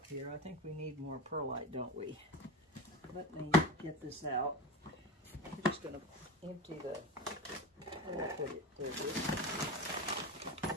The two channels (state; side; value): normal; both; correlation 0.25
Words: here. I think we need more perlite, don't we? Let me get this out. I'm just gonna empty the, where did I put it? There it is.